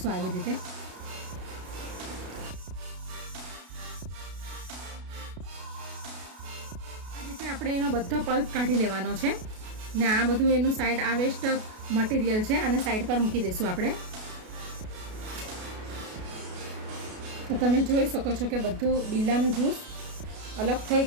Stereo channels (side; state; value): left; late; 33 ms